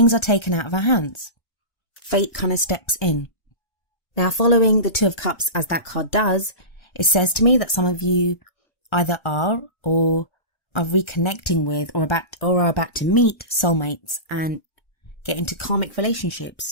are taken out of our hands. Fate kind of steps in. Now, following the Two of Cups, as that card does, it says to me that some of you either are or are reconnecting with or are about to meet soulmates and get into karmic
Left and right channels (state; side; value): late; right; 1.3 ms